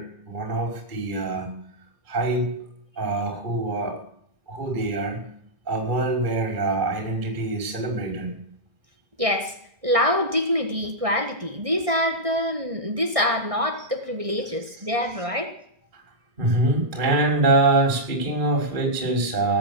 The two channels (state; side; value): late; left; 1.6 ms